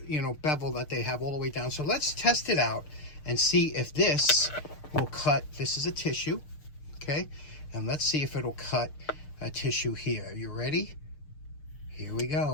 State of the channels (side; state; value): right; late; 6.6 ms